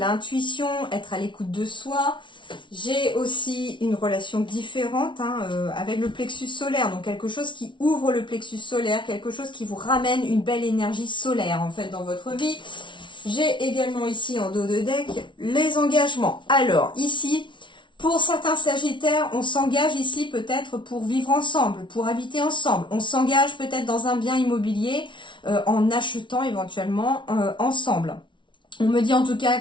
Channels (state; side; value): late; right; 0.24 ms